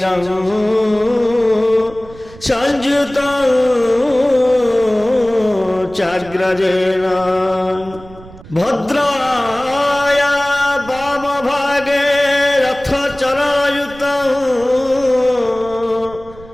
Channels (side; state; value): right; noise; rumble, 20 dB below the sound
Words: সংযুতং চাগ্রজেন ভদ্রায়া বামভাগে রথচরযুতং